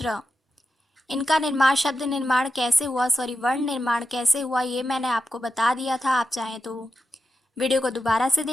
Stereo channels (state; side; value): normal; both; correlation 0.89